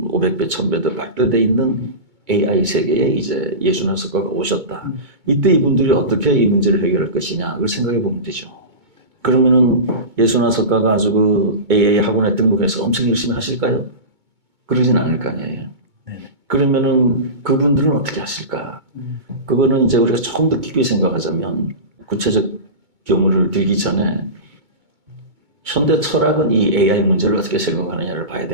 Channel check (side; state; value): left; late; 2.2 ms